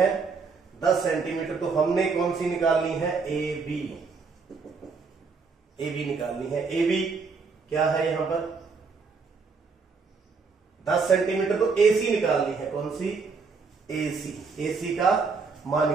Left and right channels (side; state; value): left; quieter; 4.8 dB